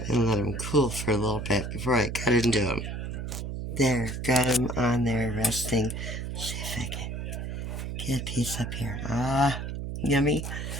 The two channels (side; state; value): right; noise; hum, 5 dB below the sound